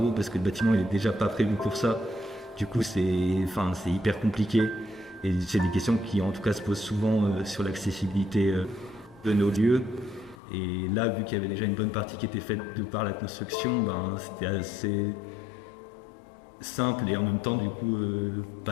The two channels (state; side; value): drops out; right; at 10.4 s